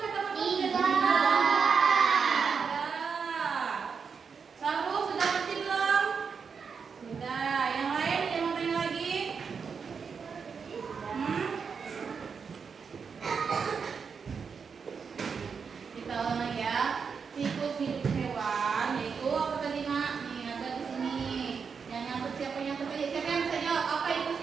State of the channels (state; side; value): quieter; left; 5.9 dB